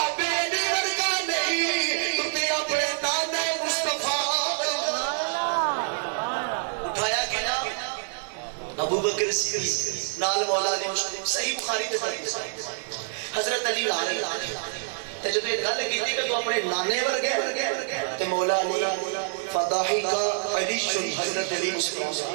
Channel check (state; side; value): silent; left; digital silence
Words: بکر صدیق نال مولا علی مشکل صحیح بخاری دے حدیث حضرت علی آ رہے تے جدوں یہ گل کیتی کہ تو اپنے نانے ورگے تے مولا علی فضاحی کا علی حضرت علی